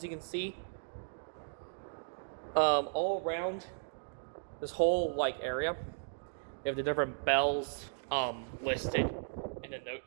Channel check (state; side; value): silent; left; digital silence